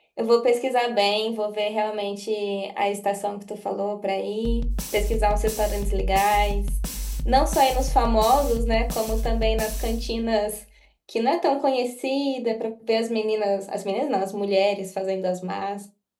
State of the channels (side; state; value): both; identical; correlation 1.00